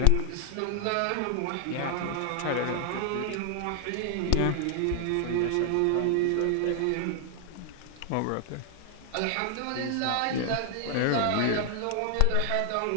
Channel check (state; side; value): different; both; correlation 0.00